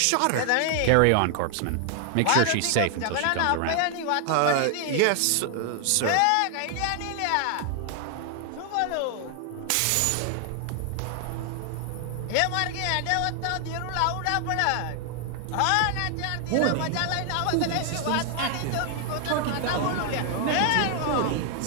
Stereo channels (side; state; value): both; different; correlation 0.00